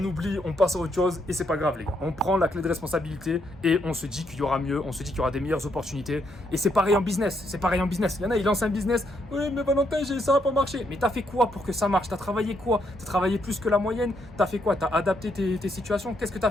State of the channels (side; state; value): both; normal; correlation 0.76